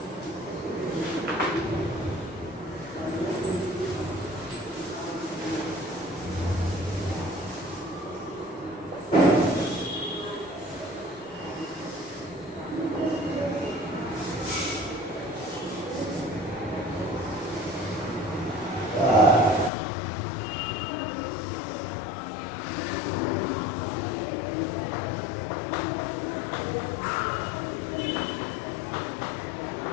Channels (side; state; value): right; drops out; at 19.7 s